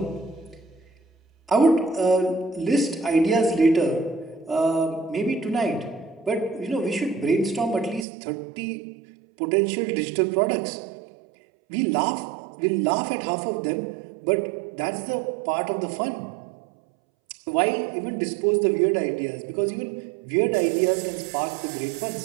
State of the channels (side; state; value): left; drops out; at 8.1 s